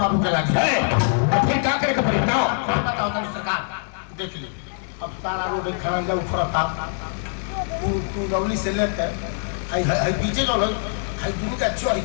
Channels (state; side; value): silent; right; 63 dB below the other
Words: बाबू के लागे। तो फिर क्या करेगा? फिर बताओ सरकार देख ली अब सारा रोड खड़ंजा उखड़ता तू लवली से लेकर पीछे जो लोग दुनू का चोरी